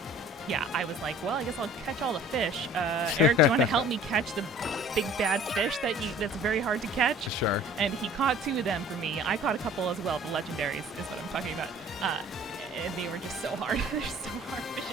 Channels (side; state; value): both; normal; correlation 0.49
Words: yeah, I was like, well, I guess I'll catch all the fish. Eric, do you want to help me catch the big bad fish that's very hard to catch? Sure. And he caught 2 of them for me. I caught a couple as well. The legendaries is what I'm talking about. And they were just so hard. They're so hard.